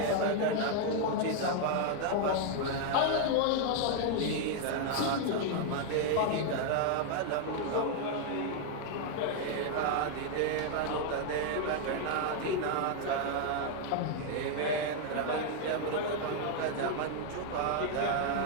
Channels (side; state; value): both; different; correlation 0.00